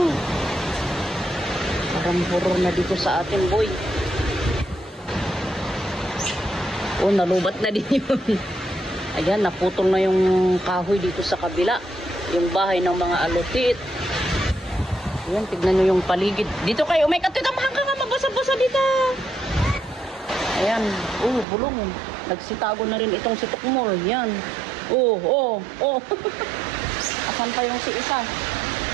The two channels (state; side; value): drops out; left; at 21.5 s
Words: Parang horror na dito sa atin, boy. Oh, nalubat na din yun. Ayan, naputol na yung kahoy dito sa kabila. Yung bahay ng mga alutit. Ayan, tignan nyo yung paligid. Dito kayo, may katitamahan ka nga, mabasa-basa dito. Ayan, bulong. Nagsitago na rin itong si Tukmol. Yan. Asan pa yung si isa?